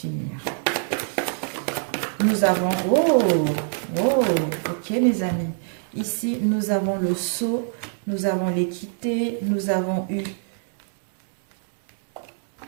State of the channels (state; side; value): silent; left; digital silence